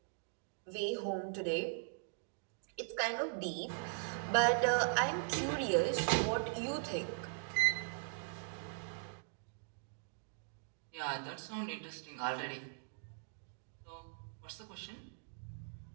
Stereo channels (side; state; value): left; silent; digital silence